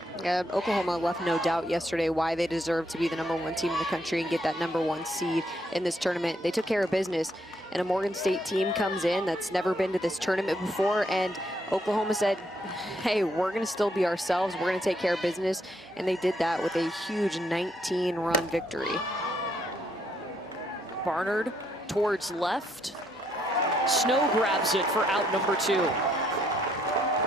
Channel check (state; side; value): normal; both; correlation 0.73